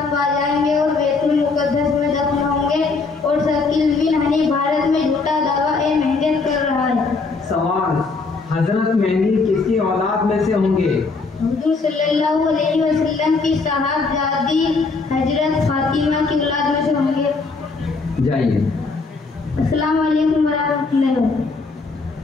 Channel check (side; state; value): right; quieter; 4.1 dB